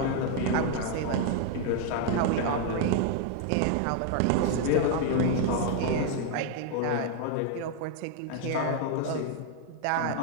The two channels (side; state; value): both; different; correlation 0.00